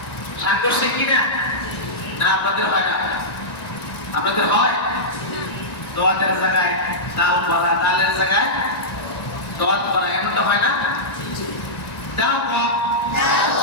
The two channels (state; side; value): late; right; 1.9 ms